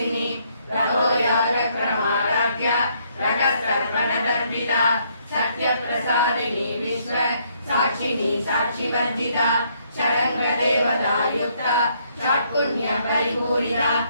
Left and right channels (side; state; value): both; inverted; correlation -0.70